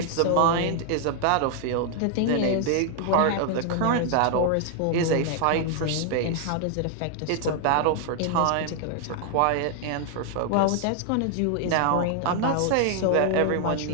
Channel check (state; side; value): different; both; correlation 0.00